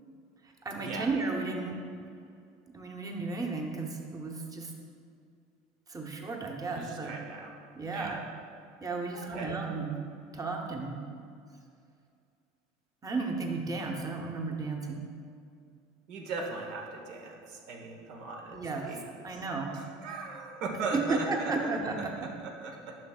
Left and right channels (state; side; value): quieter; left; 3.2 dB